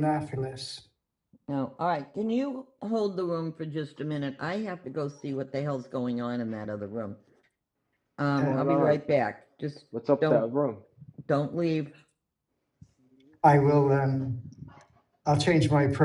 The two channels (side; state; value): both; identical; correlation 1.00